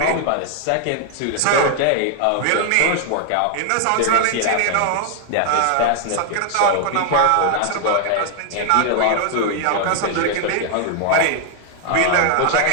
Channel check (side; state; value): both; different; correlation 0.00